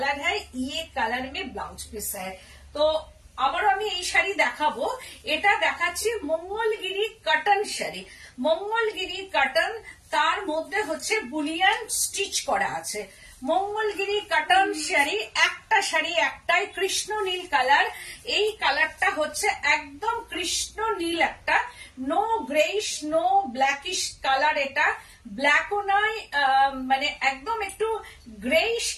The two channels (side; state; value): both; identical; correlation 1.00